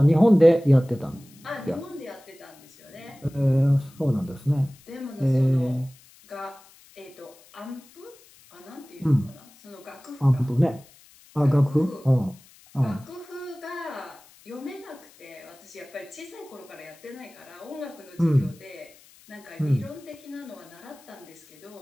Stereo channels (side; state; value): left; noise; hiss, 26 dB below the sound